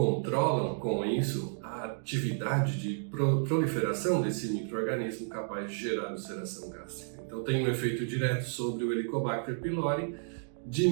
com isso a atividade de proliferação desse micro-organismo capaz de gerar ulceração gástrica. Então tem um efeito direto sobre o Helicobacter pylori,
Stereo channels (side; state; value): left; silent; digital silence